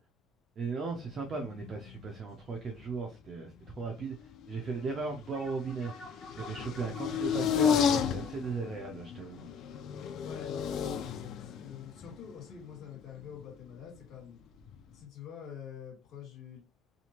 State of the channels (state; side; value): quieter; right; 3.4 dB